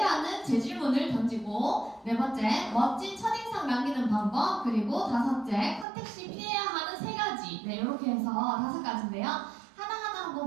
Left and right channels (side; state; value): left; drops out; at 5.9 s